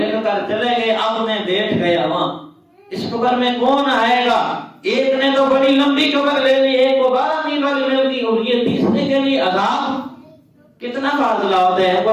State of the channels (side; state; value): both; identical; correlation 1.00